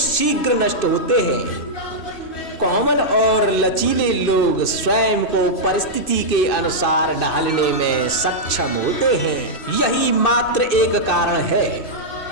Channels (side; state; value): right; late; 2.6 ms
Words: नष्ट होते हैं, कोमल और लचीले लोग स्वयं को परिस्थिति के अनुसार ढालने में सक्षम होते हैं। यही मात्र एक कारण है।